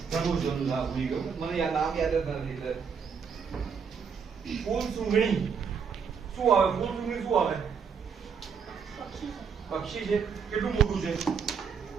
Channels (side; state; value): left; quieter; 6.4 dB